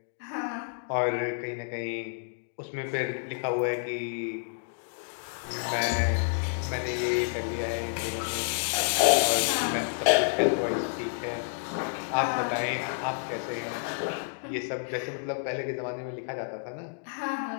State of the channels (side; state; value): right; silent; digital silence